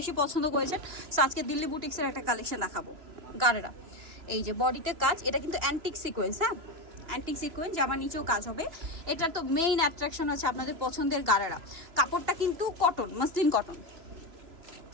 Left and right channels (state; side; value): late; left; 3.0 ms